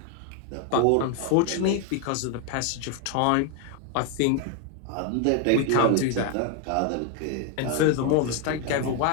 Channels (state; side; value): different; both; correlation 0.01